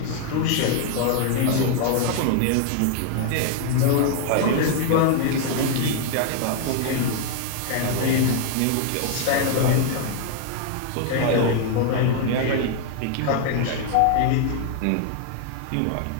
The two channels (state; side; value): different; both; correlation 0.00